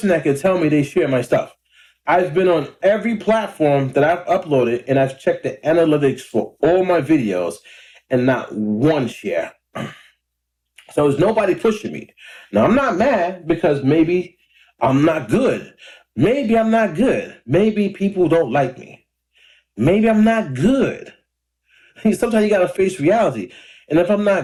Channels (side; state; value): both; identical; correlation 1.00